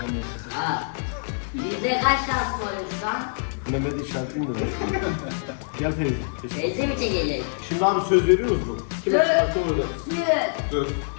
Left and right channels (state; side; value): silent; right; digital silence